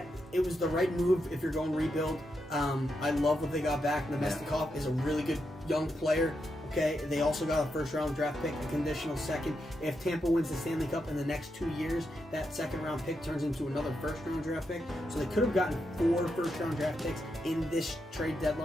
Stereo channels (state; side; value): normal; both; correlation 0.84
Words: it was the right move if you're going rebuild. I love what they got back. Nemestikov is a really good young player. Okay, they also got a first-round draft pick, a conditional second. If Tampa wins the Stanley Cup in the next 2 years, that second-round pick turns into another first-round draft pick. So they could have gotten 4 first-round draft picks in this trade